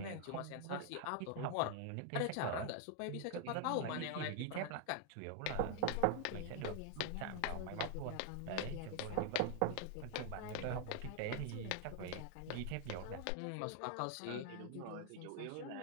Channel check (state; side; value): different; both; correlation 0.00